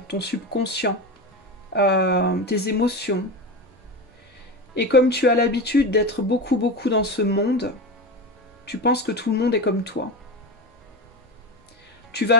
ton subconscient, tes émotions. Et comme tu as l'habitude d'être beaucoup dans ce monde, tu penses que tout le monde est comme toi. Tu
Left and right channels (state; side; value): normal; both; correlation 0.22